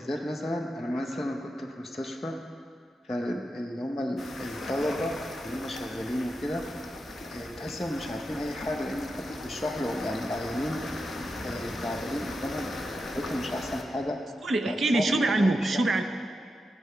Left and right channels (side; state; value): both; normal; correlation 0.88